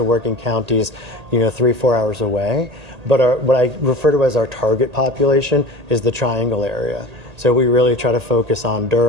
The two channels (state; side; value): late; left; 1.8 ms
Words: work in counties, 3-4 hours away. But what I refer to as our target population is the triangle area. So we really try to focus on